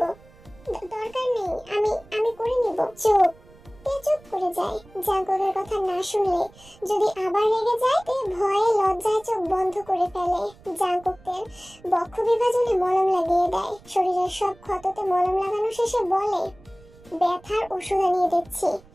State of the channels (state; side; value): noise; right; rumble, 25 dB below the sound